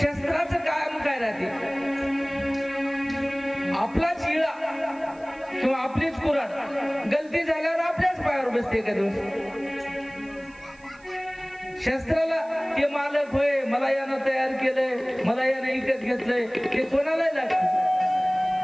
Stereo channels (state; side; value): noise; right; hiss, 30 dB below the sound